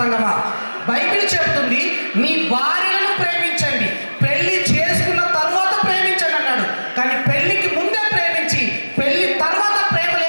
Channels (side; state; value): both; inverted; correlation -1.00